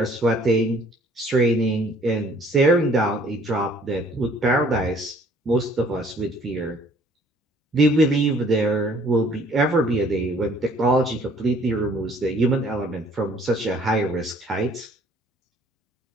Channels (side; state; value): both; normal; correlation 0.58